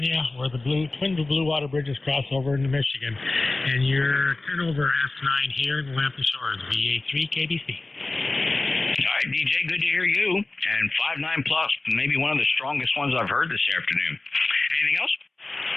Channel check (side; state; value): right; quieter; 3.2 dB